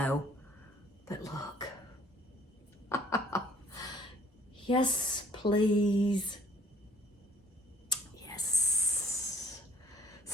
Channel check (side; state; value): both; normal; correlation 0.58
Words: but look. Yes, please. Yes.